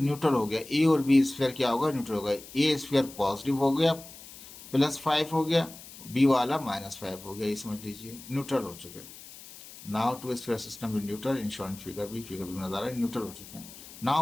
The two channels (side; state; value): left; noise; hiss, 17 dB below the sound